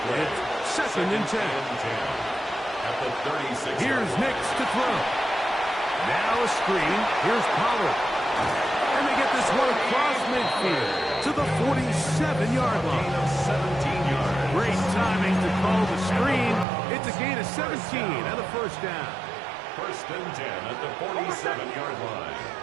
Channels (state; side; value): drops out; left; at 16.7 s